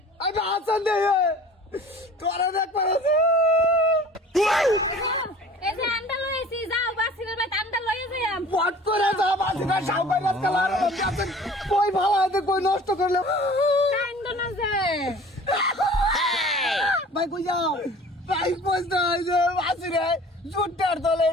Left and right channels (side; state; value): both; normal; correlation 0.46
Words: আমি হাসান দে তোরা দেখ পারে এই যে আন্ডা লইছি যাও বাসিরের বাইত আন্ডা লইয়া যাইম পট করে যা বাসিটা সাউবাই রাত কালার আছে কই ভালো আছে কই নষ্ট করলে কান্দ না যে ভাই কই যাও ভাই পয়সা যে বাসিরে জুটার দলে